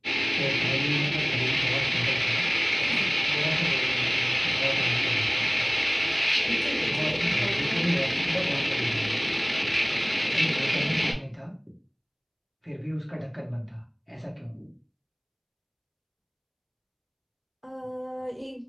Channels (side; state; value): both; identical; correlation 1.00